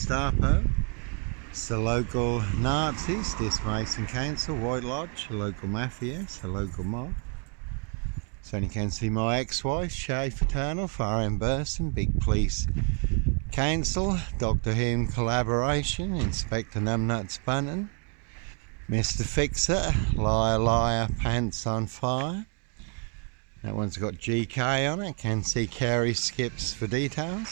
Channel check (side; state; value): left; quieter; 36.4 dB